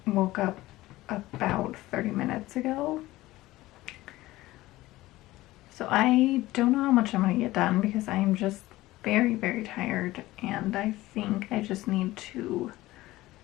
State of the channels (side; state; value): right; quieter; 17.6 dB